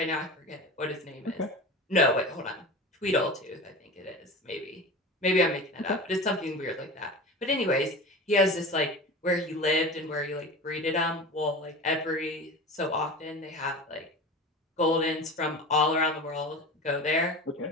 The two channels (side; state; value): both; normal; correlation 0.32